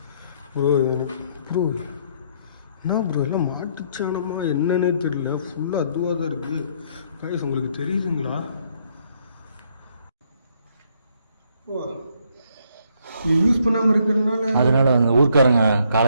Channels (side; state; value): both; inverted; correlation -0.69